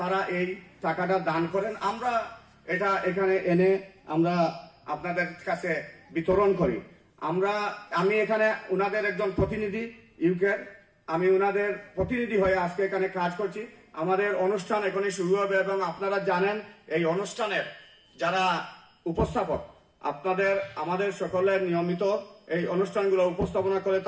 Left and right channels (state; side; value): identical; both; correlation 1.00